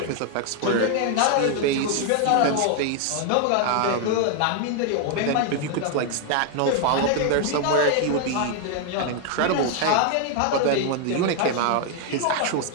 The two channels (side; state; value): both; different; correlation 0.00